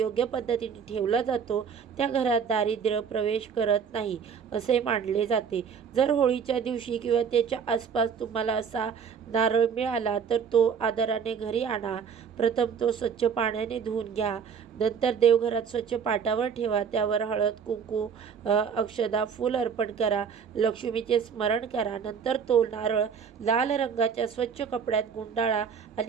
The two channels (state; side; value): quieter; left; 6.7 dB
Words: पद्धतीने ठेवला जातो त्या घरात दारिद्र्य प्रवेश करत नाही असे मानले जाते. जर होळीच्या दिवशी किंवा त्याच्या आसपास तुम्हाला असा नारळ मिळाला तर तो आदराने घरी आणा. प्रथम तो स्वच्छ पाण्याने धुवून घ्या. नंतर देवघरात स्वच्छ पाटावर ठेवा. त्यावर हळद, कुंकू, अक्षदा, फूल अर्पण करा. लक्ष्मीचे स्मरण करा. नंतर तो नारळ लाल रंगाच्या स्वच्छ कपड्यात गुंडाळा